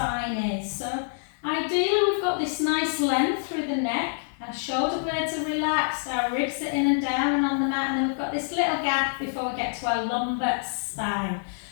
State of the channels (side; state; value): right; silent; digital silence